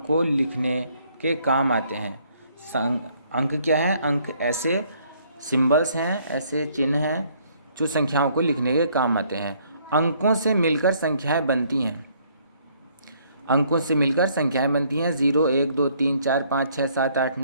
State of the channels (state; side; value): inverted; both; correlation -0.65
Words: लिखने के काम आते हैं। अंक क्या है? अंक ऐसे सिंबल्स हैं, ऐसे चिन्ह हैं जो संख्याओं को लिखने के काम आते हैं। अंकों से मिलकर संख्याएं बनती हैं। अंकों से मिलकर संख्याएं बनती हैं। 0, 1, 2, 3, 4, 5, 6, 7, 8,